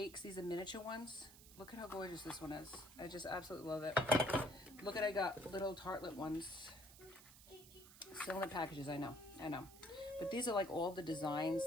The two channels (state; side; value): noise; right; hiss, 19 dB below the sound